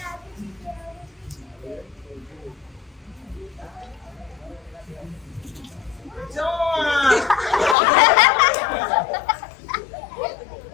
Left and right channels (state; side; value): drops out; right; at 7.8 s